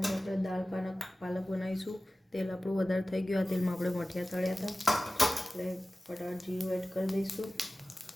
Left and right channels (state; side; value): normal; both; correlation 0.96